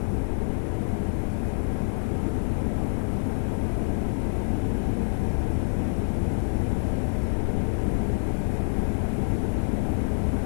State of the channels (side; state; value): right; silent; 61 dB below the other